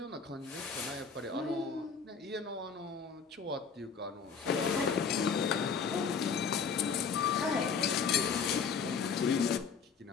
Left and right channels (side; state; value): right; quieter; 5.9 dB